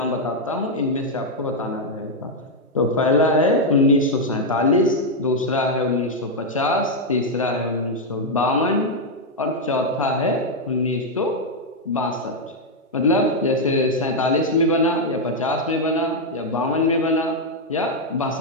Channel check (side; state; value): both; normal; correlation 0.00